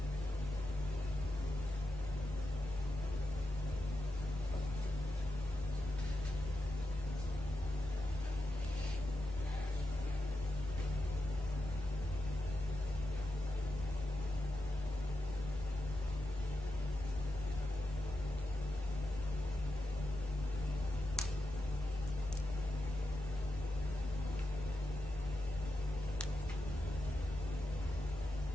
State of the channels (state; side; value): normal; both; correlation 0.88